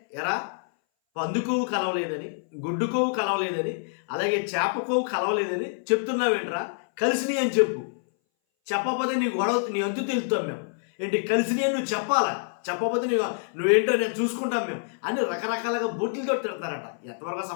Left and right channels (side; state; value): right; silent; 59 dB below the other